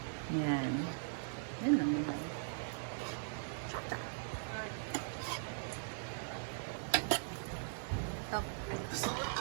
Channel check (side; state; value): left; silent; digital silence